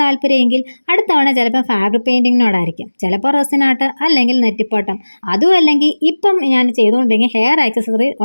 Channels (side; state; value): both; inverted; correlation -1.00